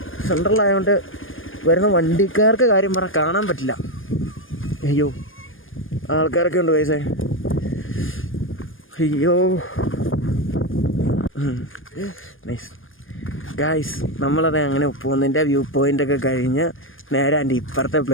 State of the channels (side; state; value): right; late; 0.59 ms